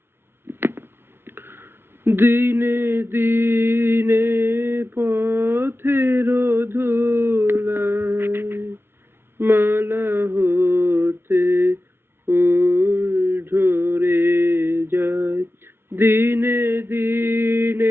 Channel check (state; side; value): late; left; 0.11 ms